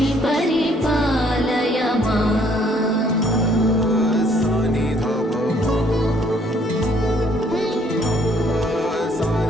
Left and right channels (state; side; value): normal; both; correlation 0.64